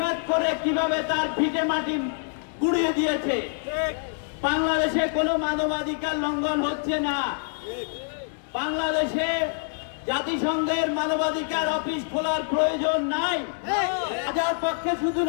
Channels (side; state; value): right; silent; digital silence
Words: করে কিভাবে তার ভিটে মাটি গুড়িয়ে দিয়েছে। বাংলাদেশে কোনো মানবাধিকার লঙ্ঘন হচ্ছে না। বাংলাদেশে জাতিসংঘের মানবাধিকার অফিস খোলার প্রয়োজন নাই। রাজার পক্ষে শুধু